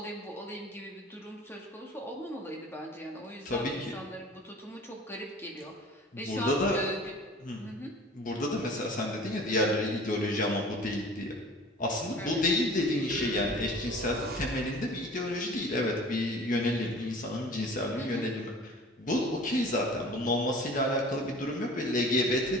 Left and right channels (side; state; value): both; normal; correlation 0.44